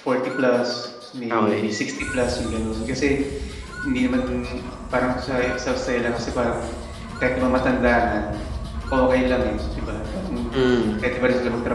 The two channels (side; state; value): both; identical; correlation 1.00